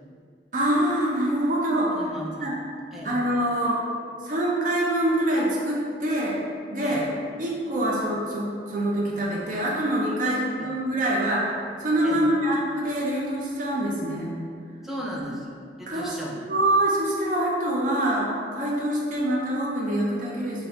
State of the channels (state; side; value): normal; both; correlation 0.40